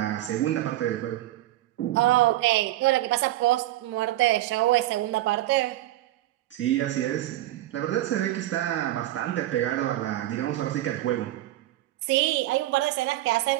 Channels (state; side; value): quieter; left; 15.2 dB